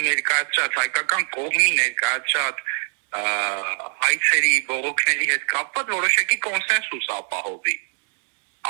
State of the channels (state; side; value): silent; left; 63 dB below the other